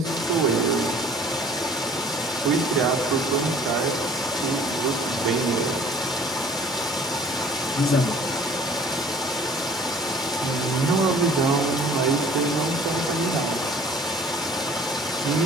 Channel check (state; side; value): normal; both; correlation 0.52